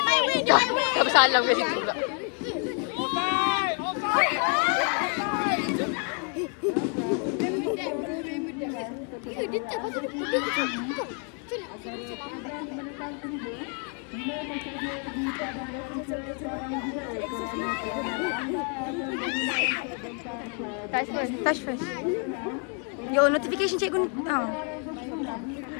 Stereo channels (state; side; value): quieter; right; 38.6 dB